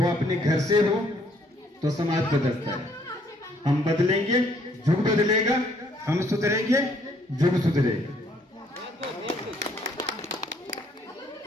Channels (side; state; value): both; normal; correlation 0.66